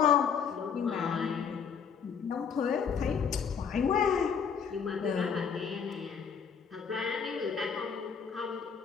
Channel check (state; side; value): quieter; right; 6.6 dB